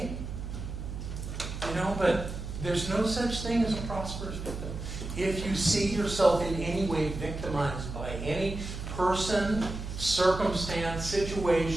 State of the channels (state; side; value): noise; right; hum, 7 dB below the sound